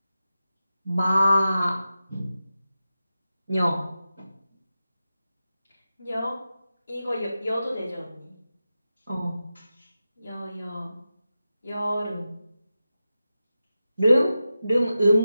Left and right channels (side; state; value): both; inverted; correlation -0.92